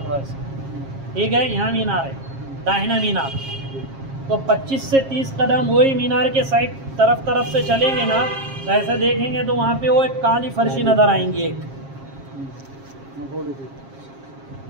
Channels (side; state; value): left; late; 7.4 ms